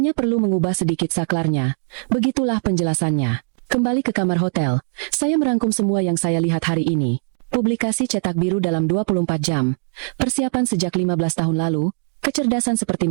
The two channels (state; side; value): silent; left; digital silence